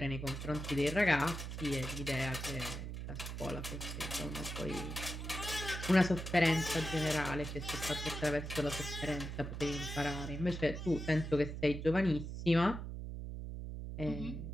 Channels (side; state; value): right; noise; hum, 6 dB below the sound